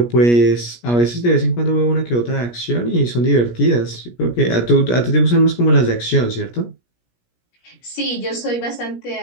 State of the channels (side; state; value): right; late; 17 ms